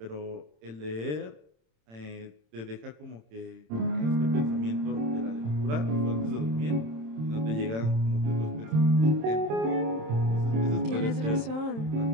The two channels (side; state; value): left; late; 27 ms